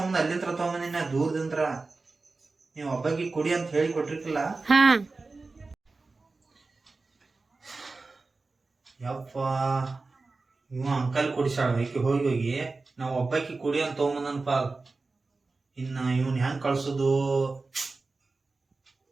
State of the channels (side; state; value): left; quieter; 3.7 dB